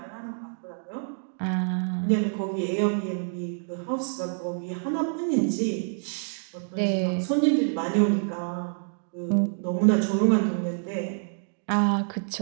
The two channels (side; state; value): left; silent; digital silence